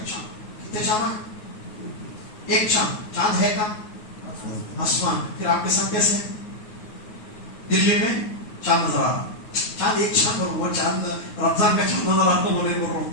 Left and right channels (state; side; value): late; right; 9.4 ms